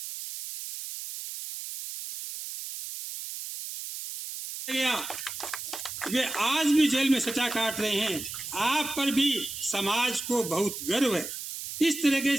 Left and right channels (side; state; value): right; noise; hiss, 8 dB below the sound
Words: वे आज भी जेल में सजा काट रहे हैं। आप पर भी समाज को बहुत गर्व है। इस तरीके